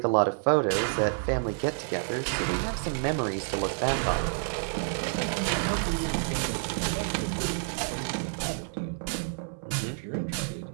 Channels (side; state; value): left; silent; 59 dB below the other